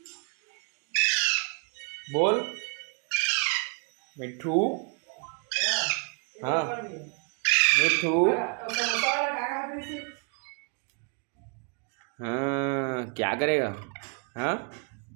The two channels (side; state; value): left; quieter; 38.3 dB